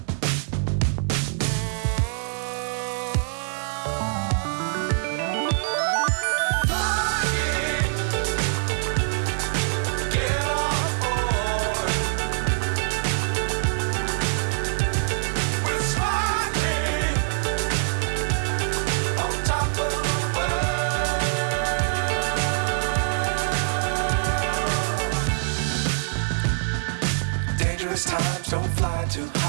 Times don't fly too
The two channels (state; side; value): silent; left; 58 dB below the other